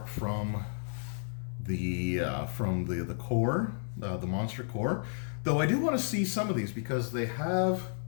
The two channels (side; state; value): right; silent; 56 dB below the other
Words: from the core, the monster core. Though I do want to see some of these because they have,